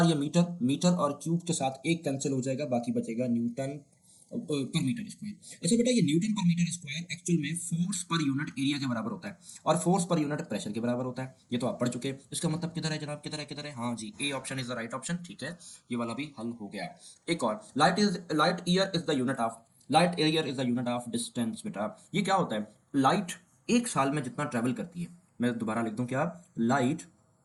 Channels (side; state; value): both; identical; correlation 1.00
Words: ये मीटर, मीटर और क्यूब के साथ एक कैंसिल हो जाएगा, बाकी बचेगा न्यूटन पर मीटर स्क्वायर। अच्छा बेटा, ये न्यूटन पर मीटर स्क्वायर एक्चुअल में फोर्स पर यूनिट एरिया के बराबर होता है और फोर्स पर यूनिट प्रेशर के बराबर होता है, ये तो आप पढ़ चुके हैं। इसका मतलब किधर है जनाब, किधर है, किधर है, हाँ जी, A option is the right option. ठीक है, ये वाला भी हल हो गया। एक और, light year is the unit of, light year is the unit of distance. बेटा ये क्या होता है, लाइट एक साल में जितना ट्रेवल करती है, मैं दोबारा लिख दूं क्या, लाइट